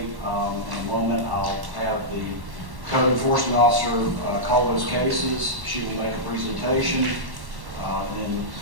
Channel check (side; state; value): left; late; 1.1 ms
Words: In a moment, I'll have the Code Enforcement Officer call those cases. She will make a presentation. Then